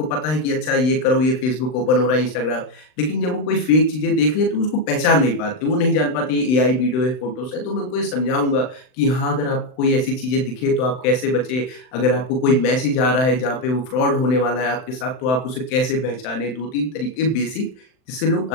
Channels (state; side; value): late; right; 39 ms